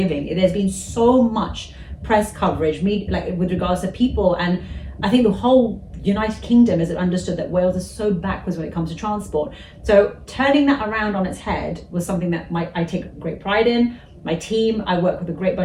There's been so much press coverage, like with regards to people, and I think the whole United Kingdom has understood that Wales is so backwards when it comes to transport. So turning that around on its head was something that I take great pride in. My team, I work with a great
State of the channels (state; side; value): identical; both; correlation 1.00